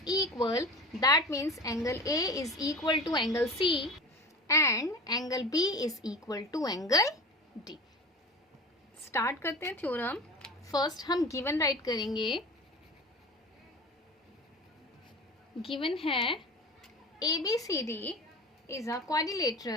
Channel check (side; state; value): both; normal; correlation 0.34